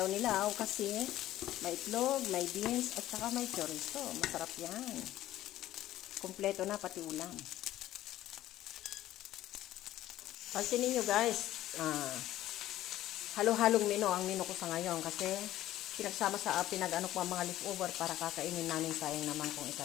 kasi may itlog, may beans, at saka may chorizo. Masarap yan. Kompleto na pati ulam. Pansinin nyo guys, halo-halong menu ang menu ko sa ngayon kasi pinagsama sa pinag-ano ko ang mga leftover para kakainin namin, sayang naman kung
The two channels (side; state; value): right; quieter; 14.1 dB